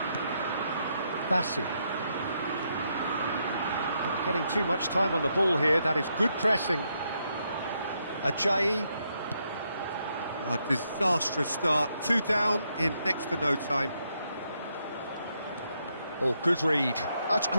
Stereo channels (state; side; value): inverted; both; correlation -0.78